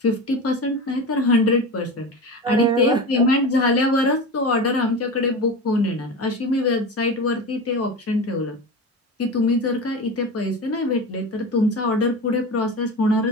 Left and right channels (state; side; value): normal; both; correlation 0.27